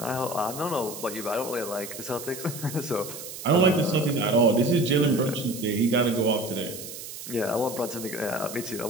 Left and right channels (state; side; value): noise; right; hiss, 11 dB below the sound